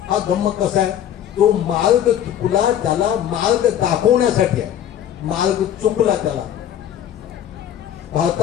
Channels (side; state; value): right; quieter; 10.4 dB